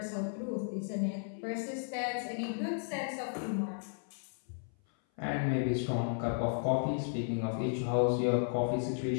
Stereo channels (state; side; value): silent; right; 55 dB below the other